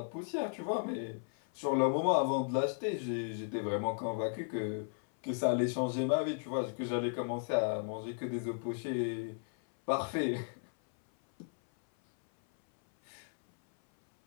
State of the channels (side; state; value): right; silent; 55 dB below the other